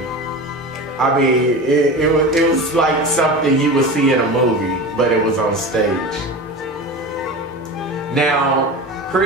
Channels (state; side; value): normal; both; correlation 0.30